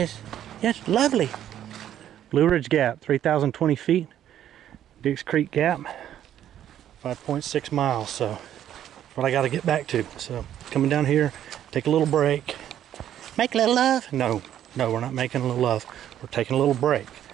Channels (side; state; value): left; quieter; 11.0 dB